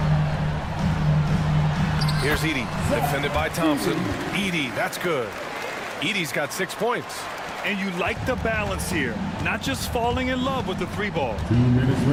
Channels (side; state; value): both; identical; correlation 1.00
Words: Here's Edey, defended by Thompson. Edey, that's good. Edey's got 6 points. And you like the balance here, not just falling in love with the 3-ball. 2 minutes